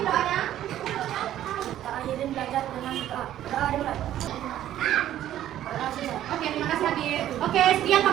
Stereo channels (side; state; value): left; quieter; 12.2 dB